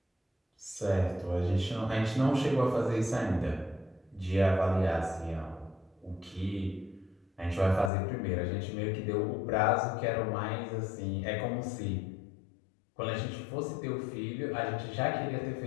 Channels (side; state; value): right; drops out; at 7.9 s